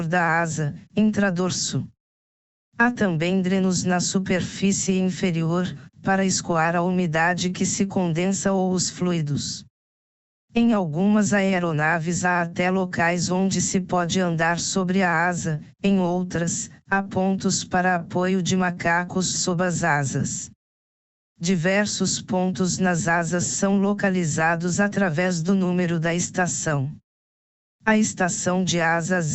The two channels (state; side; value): identical; both; correlation 1.00